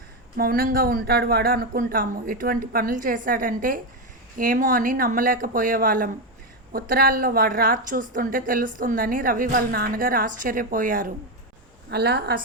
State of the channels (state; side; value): normal; both; correlation 0.09